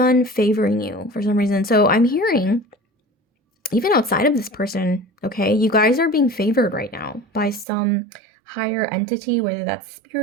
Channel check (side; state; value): left; drops out; at 7.7 s